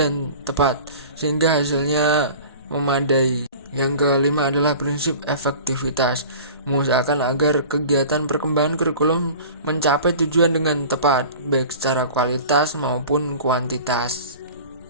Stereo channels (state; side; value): inverted; both; correlation -0.40